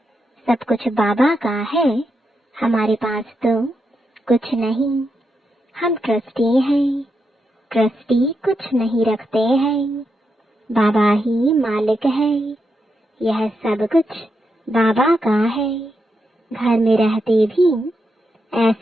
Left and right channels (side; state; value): both; normal; correlation 0.84